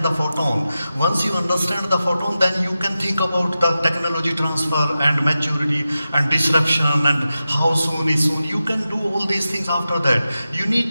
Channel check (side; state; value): both; inverted; correlation -0.92